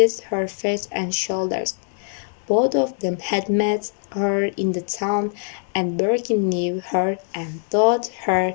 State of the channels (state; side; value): silent; right; 61 dB below the other